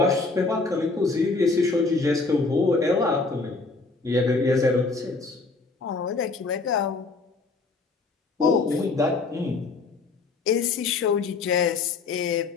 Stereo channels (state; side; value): quieter; right; 3.9 dB